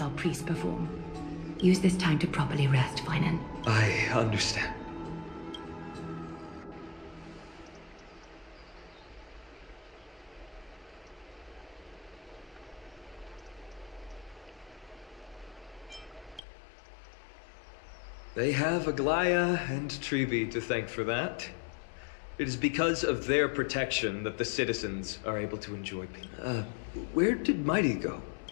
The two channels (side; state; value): right; drops out; at 16.4 s